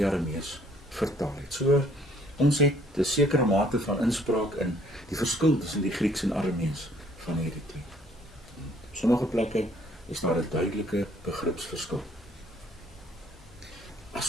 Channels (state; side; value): normal; both; correlation 0.62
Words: Aramees vertaal het. So, ons het 'n sekere mate van inspraak in die verskil tussen die Grieks en Aramees van hierdie twee. Op sommige plekke is daar 'n duidelike begripsverskil. As